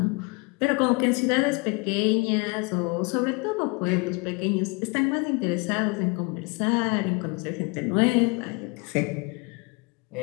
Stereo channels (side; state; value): right; quieter; 29.4 dB